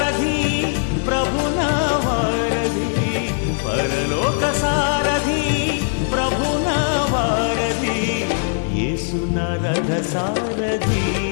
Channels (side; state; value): right; silent; 66 dB below the other